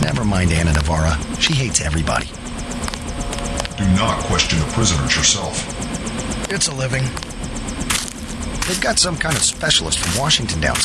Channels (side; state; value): both; identical; correlation 1.00